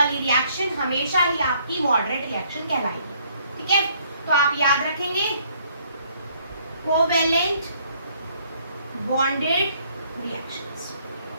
रिएक्शन हमेशा ही आपकी मॉडरेट रिएक्शन कहलाएगी। ठीक है, तो आप याद रखेंगे कोवेलेंट बॉन्डेड रिएक्शंस,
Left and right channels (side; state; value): both; inverted; correlation -0.65